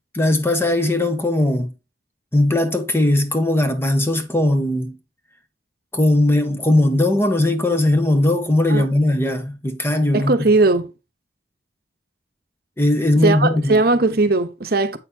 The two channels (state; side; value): normal; both; correlation 0.66